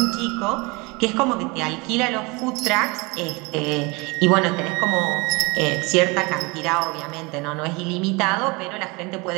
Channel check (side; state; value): left; quieter; 26.6 dB